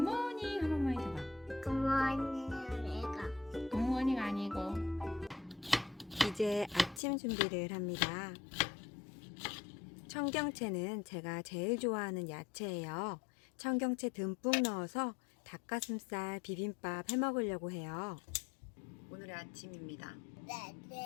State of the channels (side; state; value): right; drops out; at 7.0 s